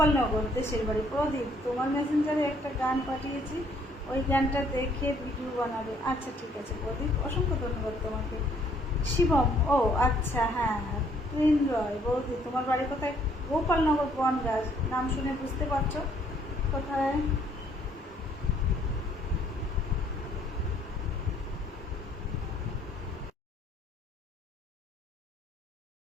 দেশের বাড়ি। প্রদীপ তোমার মেসেঞ্জারে একটা গান পাঠিয়েছি, ওই গানটা দেখে ভিডিও বানাবে। আচ্ছা ঠিক আছে প্রদীপ, অসংখ্য ধন্যবাদ তোমাকে। শিবম ও আচ্ছা হ্যাঁ। প্রেম রয় বৌদি তোমার বাড়ি কোথায়? গোপালনগর বনগাঁ, নাম শুনে বুঝতে পারছো কোথায়।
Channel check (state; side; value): normal; both; correlation 0.65